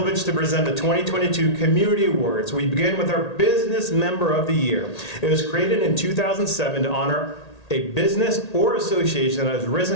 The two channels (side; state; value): right; late; 1.8 ms